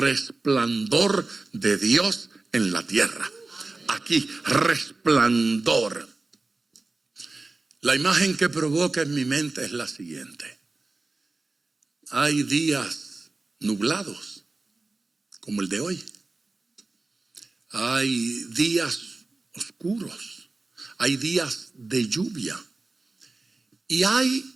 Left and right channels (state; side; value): quieter; left; 3.4 dB